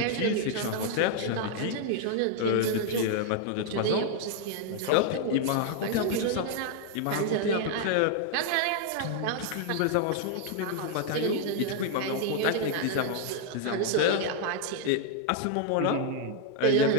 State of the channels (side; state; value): both; different; correlation 0.00